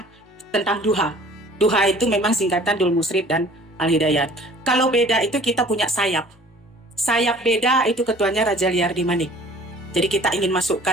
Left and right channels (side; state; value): both; normal; correlation 0.50